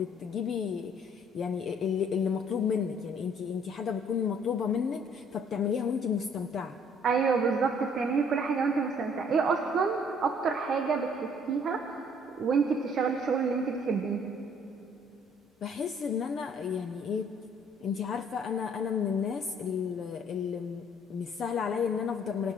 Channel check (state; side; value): normal; both; correlation 0.60